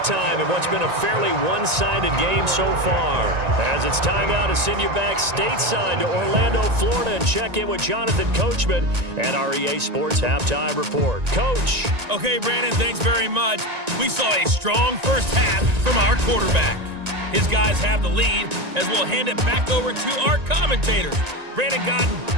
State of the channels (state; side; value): late; left; 1.9 ms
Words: in what's been a fairly one-sided game so far. As it's time now to send you back stateside to Orlando, Florida, and check in with Jonathan Coachman at our EA Sports Halftime Report. Coach. Okay, Brandon, thanks very much. We saw a strong first half from our quarterback. His guys have the lead as we'll hand it back over to our commentators, Brandon Godden